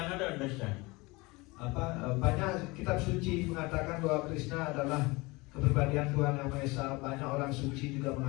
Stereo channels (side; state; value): right; quieter; 24.1 dB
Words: understand? Banyak kitab suci mengatakan bahwa Krishna adalah kepribadian Tuhan Yang Maha Esa. Banyak orang suci juga